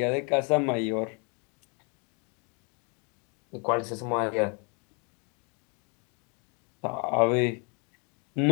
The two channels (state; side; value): quieter; right; 35.4 dB